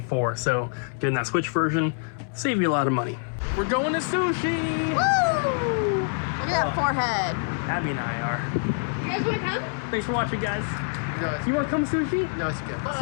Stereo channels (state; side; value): silent; right; 61 dB below the other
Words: so getting that Switch version save you a lot of money. We're going to sushi! Woo! Look at that forehead. Abby and I are. You guys want to come? Thanks for watching, guys. No, You want to come sushi? no, it's okay.